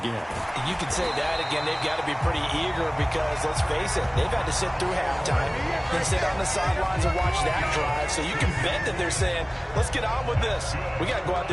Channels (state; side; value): identical; both; correlation 1.00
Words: You can say that again. They've got to be pretty eager because, let's face it, they've had to sit through halftime, then sit on the sidelines and watch that drive. So you can bet that they're saying, let's get on with this. We got to go out